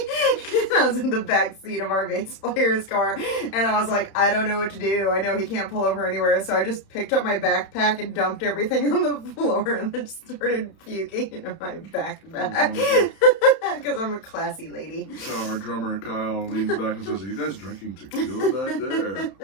I was in the back seat of our bass player's car, and I was like, I don't know what to do. I know he can't pull over anywhere, so I just picked up my backpack and dumped everything on the floor, and then started puking into my backpack. Because I'm a classy lady. So our drummer Kyle leans back and says, are you guys drinking tequila back there?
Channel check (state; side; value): late; right; 31 ms